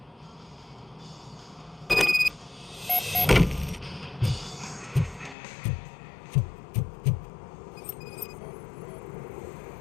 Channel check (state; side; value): drops out; right; at 5.4 s